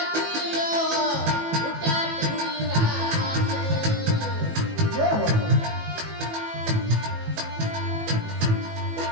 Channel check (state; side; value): late; left; 18 ms